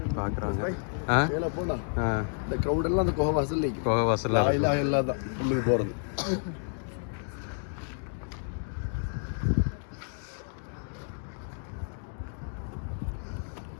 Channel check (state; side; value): silent; right; 58 dB below the other